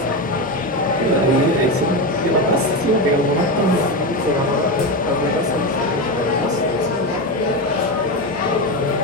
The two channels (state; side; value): normal; both; correlation 0.16